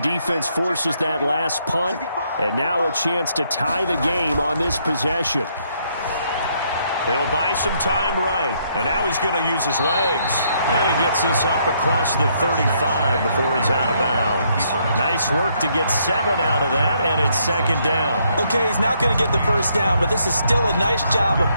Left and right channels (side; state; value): both; inverted; correlation -0.72